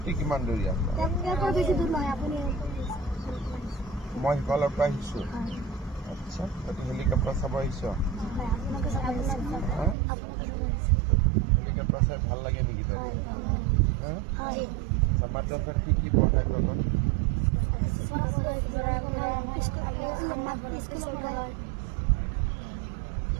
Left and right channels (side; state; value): left; drops out; at 10.0 s